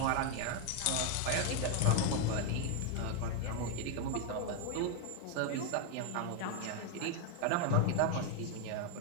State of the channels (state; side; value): different; both; correlation 0.01